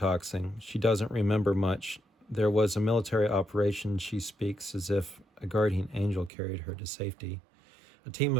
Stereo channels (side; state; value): left; drops out; at 6.3 s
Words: She doesn't remember much. There was a military operation. She speaks as if a guardian angel carried her to safety. A team